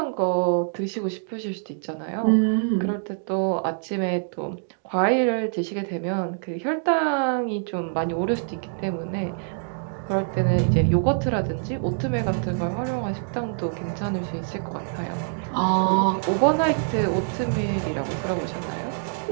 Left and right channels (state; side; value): silent; left; digital silence